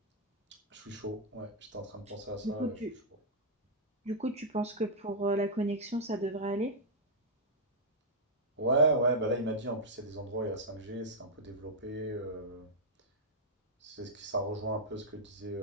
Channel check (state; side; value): normal; both; correlation -0.06